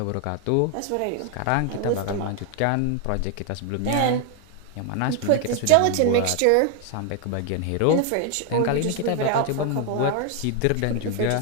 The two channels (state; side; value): different; both; correlation 0.01